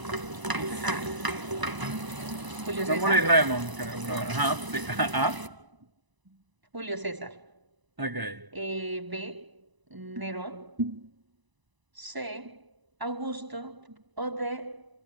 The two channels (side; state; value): left; late; 1.0 ms